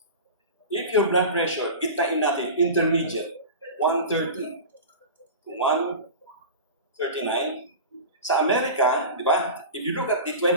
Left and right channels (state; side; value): inverted; both; correlation -0.30